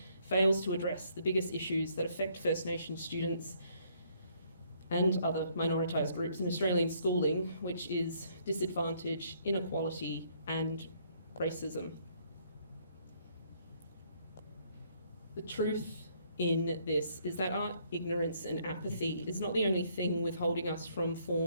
fails to address the biggest issues that affect First Nation students and other minoritised groups in Australian schooling, which is disadvantage, inequality, and racism. The truth in this is that our ignorance and apathy is not the only thing withholding us from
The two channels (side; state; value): both; inverted; correlation -0.67